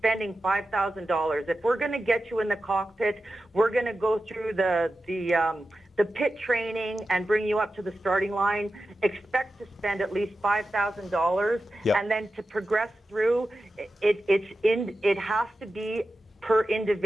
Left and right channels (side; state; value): both; normal; correlation 0.92